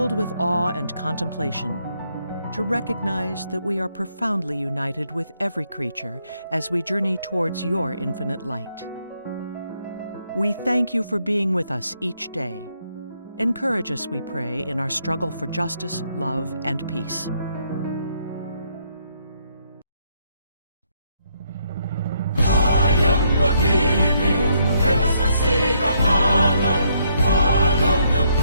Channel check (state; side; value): inverted; both; correlation -0.73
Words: with awe and contemplation, to recognize that we are profoundly united with every creature as we journey towards your infinite light. We thank you for being with us each day. Encourage us, we pray, in our struggle for justice, love, and peace.